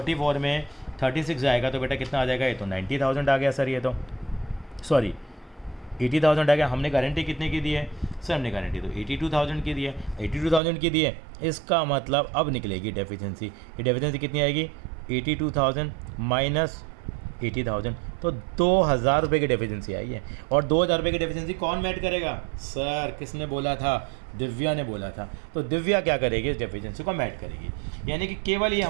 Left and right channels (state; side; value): drops out; left; at 10.6 s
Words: में 36 जाएगा तो बेटा कितना आ जाएगा, ये तो 90,000 आ गया सर, ये तो सॉरी 80,000 आ गया। हमने गारंटी कितने की दी है सर, हमने गारंटी तो 82,000 की दी है, 82,000 की दी है। इसका मतलब अब निकलेगी डेफिशिएंसी, ये डेफिशिएंसी कितनी आएगी 82,000 माइनस 80,000, तो 2,000 रुपये की डेफिशिएंसी आई है। और 2,000 रुपये की डेफिशिएंसी कौन मैट करेगा सर, किसने बोला था, दिव्या ने बोला था। तो दिव्या क्या करेगी, इस डेफिशिएंसी को मैट करेगी। यानी कि केवल ये